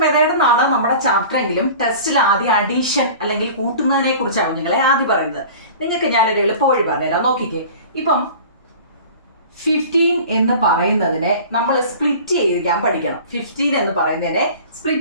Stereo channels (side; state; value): both; inverted; correlation -0.41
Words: മെത്തേഡ് എന്നാണ് നമ്മുടെ ചാപ്റ്റർ എങ്കിലും ടെസ്റ്റിൽ ആദ്യം അഡീഷൻ അല്ലെങ്കിൽ കൂട്ടുന്നതിനെ കുറിച്ചാണ് നിങ്ങളെ ആദ്യം പറയുന്നത്. നിങ്ങൾക്ക് ഞാനൊരു എളുപ്പവഴി പറഞ്ഞുതരാം, നോക്കിക്കേ. ഇപ്പം 15 എന്ന് പറയുന്നതിനെ നമ്മൾ സ്പ്ലിറ്റ് ചെയ്യാൻ പഠിക്കണം. 15 എന്ന് പറയുന്നതിനെ